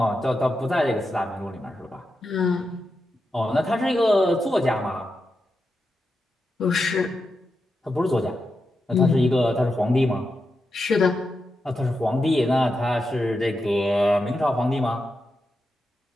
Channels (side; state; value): both; normal; correlation 0.88